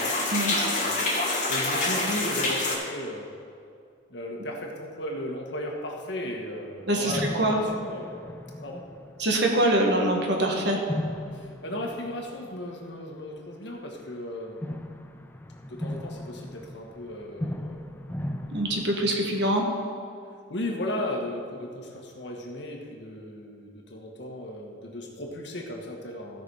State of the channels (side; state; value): both; normal; correlation 0.18